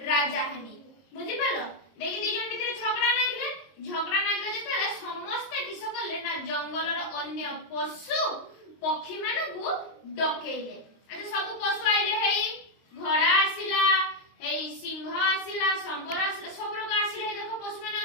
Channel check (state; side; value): late; right; 22 ms